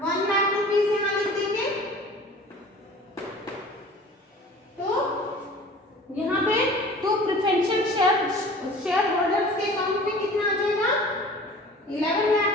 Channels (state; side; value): normal; both; correlation 0.44